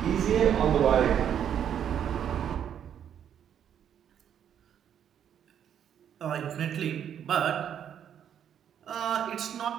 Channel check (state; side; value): quieter; left; 9.2 dB